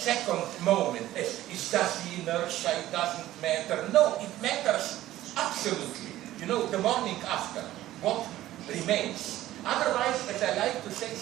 moment as is just the inertia, it doesn't matter. No, it matters absolutely. The morning after, what remains. Otherwise, as I like to say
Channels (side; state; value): left; quieter; 14.6 dB